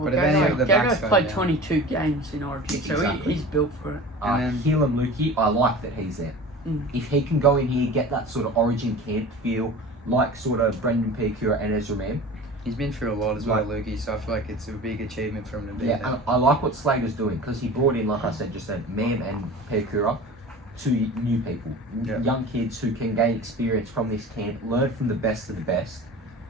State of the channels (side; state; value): both; normal; correlation 0.37